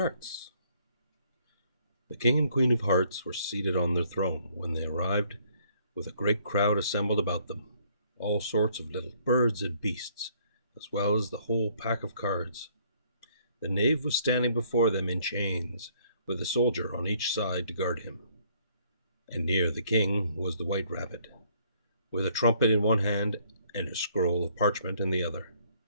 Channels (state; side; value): inverted; both; correlation -0.64